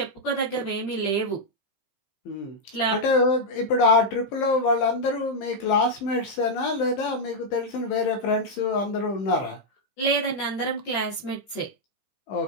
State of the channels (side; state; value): right; late; 15 ms